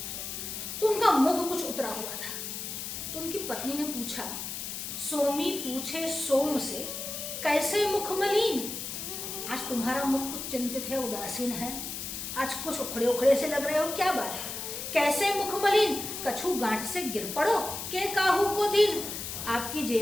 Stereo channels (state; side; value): noise; left; hiss, 6 dB below the sound